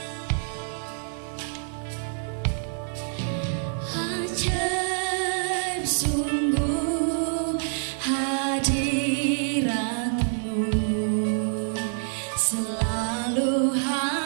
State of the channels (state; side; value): silent; left; 61 dB below the other